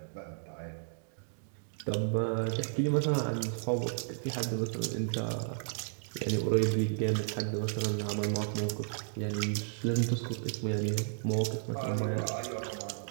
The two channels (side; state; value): left; silent; digital silence